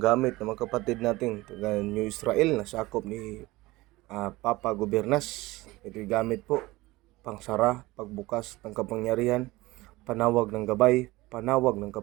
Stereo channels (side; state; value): left; quieter; 20.1 dB